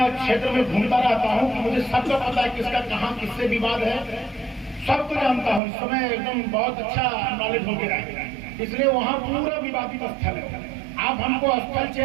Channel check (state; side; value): drops out; left; at 5.6 s